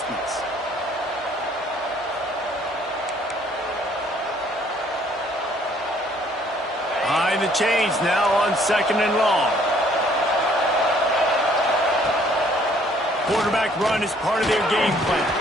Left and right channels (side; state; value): both; normal; correlation 0.61